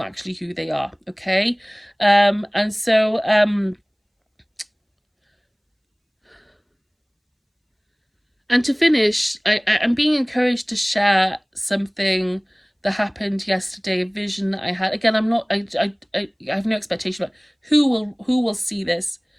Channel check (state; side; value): identical; both; correlation 1.00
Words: actually who they are. Okay. And so and to finish, I'm being encouraged to share something that happened yesterday, a vision that I had. Again, I'm not, I have no expectation about who will see this,